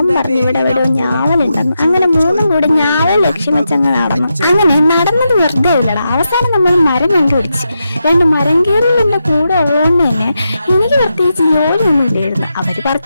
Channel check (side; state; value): both; inverted; correlation -0.86